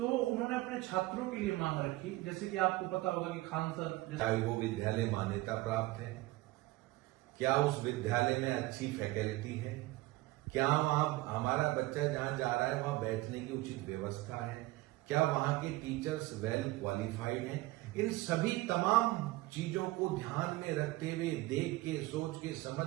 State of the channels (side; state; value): left; quieter; 19.5 dB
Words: उन्होंने अपने छात्रों के लिए मांग रखी, जैसे कि आपको पता होगा कि खान सर क्या वो विद्यालय मान्यता प्राप्त है, क्या उस विद्यालय में अच्छी फैकल्टी है, क्या वहां हमारा बच्चा जहां जा रहा है वहां बैठने की उचित व्यवस्था है, क्या वहां के टीचर्स वेल क्वालिफाइड हैं। इन सभी तमाम चीजों को ध्यान में रखते हुए, देख के, सोच के,